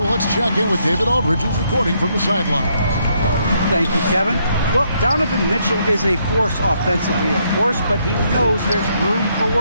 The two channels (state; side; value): inverted; both; correlation -0.74